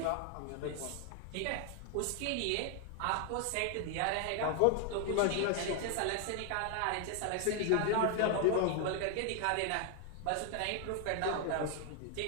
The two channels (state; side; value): different; both; correlation 0.00